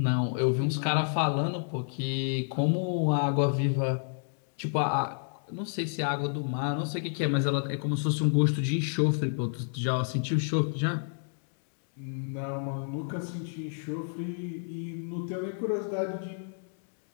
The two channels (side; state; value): right; silent; 58 dB below the other